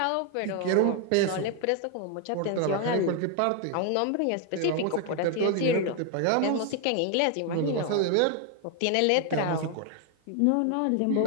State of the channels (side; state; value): both; different; correlation 0.01